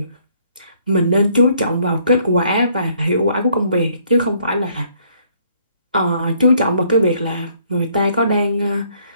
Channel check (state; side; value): inverted; both; correlation -0.66